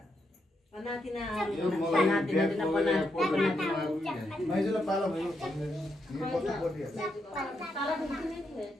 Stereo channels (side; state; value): both; normal; correlation 0.81